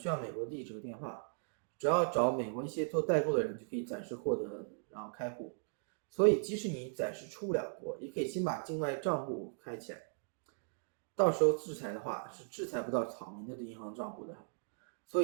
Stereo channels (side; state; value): left; silent; digital silence